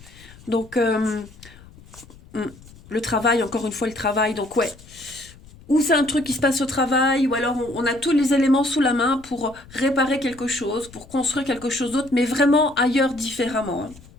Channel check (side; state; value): left; noise; rumble, 22 dB below the sound